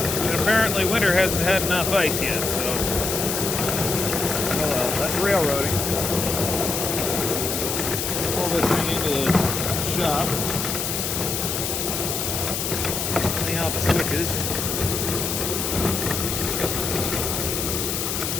But apparently winter hasn't had enough ice yet, so... Oh well, that's railroading. Pull this thing into the shop. Clean out the switches.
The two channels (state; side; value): noise; left; hiss, 2 dB below the sound